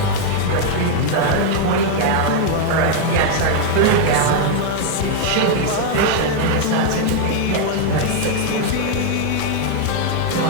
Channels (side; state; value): both; different; correlation 0.00